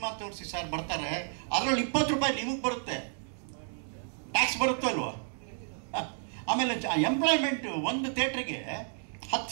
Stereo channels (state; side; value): silent; left; 57 dB below the other